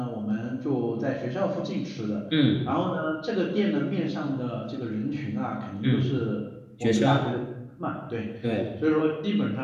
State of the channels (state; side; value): identical; both; correlation 1.00